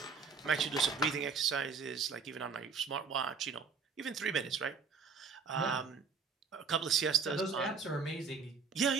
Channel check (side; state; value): left; quieter; 5.4 dB